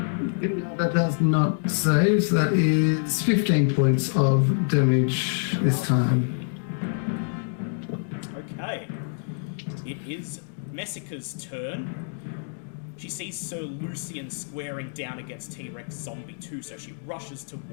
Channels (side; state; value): right; silent; digital silence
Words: That does not save, so that is 15 points of damage this time. Okay. It is Messica's turn. She sees Sir Lucian squaring down against T-Rex Zombie 2, so she rushes